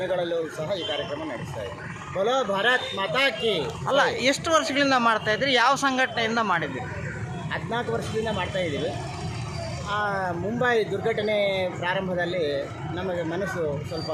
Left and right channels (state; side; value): identical; both; correlation 1.00